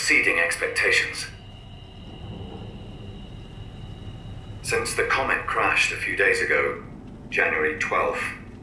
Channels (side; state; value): both; identical; correlation 1.00